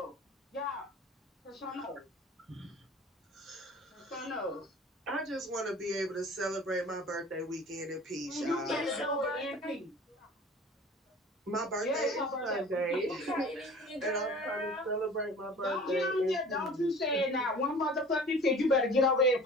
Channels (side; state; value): both; normal; correlation 0.44